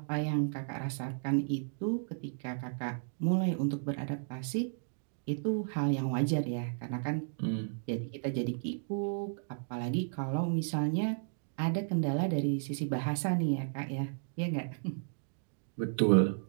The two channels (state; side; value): silent; left; digital silence